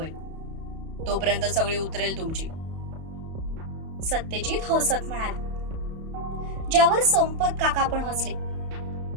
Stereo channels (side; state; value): left; late; 31 ms